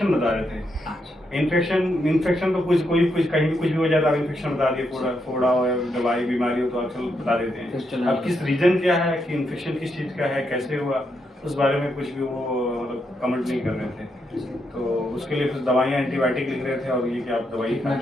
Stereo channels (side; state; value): both; normal; correlation 0.80